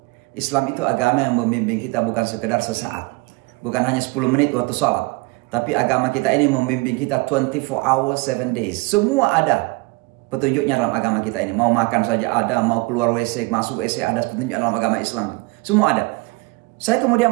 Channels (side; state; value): left; quieter; 25.2 dB